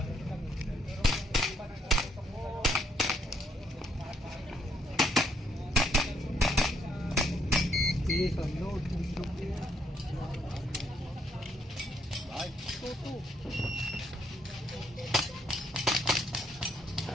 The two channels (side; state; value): both; normal; correlation 0.72